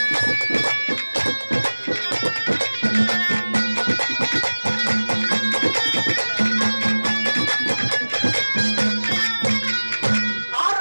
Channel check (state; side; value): inverted; both; correlation -1.00